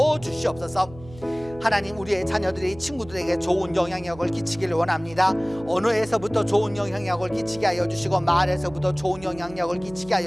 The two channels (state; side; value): noise; right; hum, 19 dB below the sound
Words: 주시옵소서. 하나님, 우리의 자녀들이 친구들에게 좋은 영향력을 끼치기를 원합니다. 언어에서부터 좋은 영향력을 끼치게 하여 주시고, 말에서부터 좋은 영향력을 끼치게